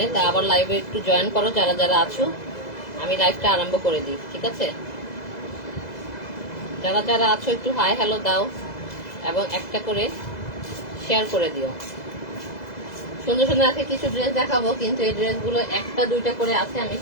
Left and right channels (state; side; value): late; right; 2.0 ms